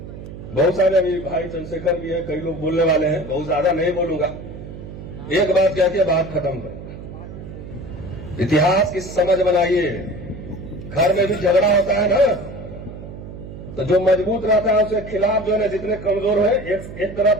बहुत सारे अभी भाई चंद्रशेखर भी है, कई लोग बोलने वाले हैं, बहुत ज्यादा नहीं बोलूंगा। एक बात कह के बात खत्म करूंगा। इतिहास की समझ बनाइए। घर में भी झगड़ा होता है ना, तो जो मजबूत रहता है उसके खिलाफ जो है जितने कमजोर है एक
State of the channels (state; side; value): noise; right; hum, 12 dB below the sound